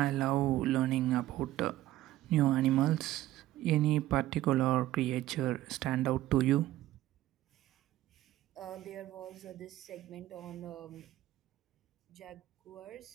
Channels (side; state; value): left; quieter; 14.8 dB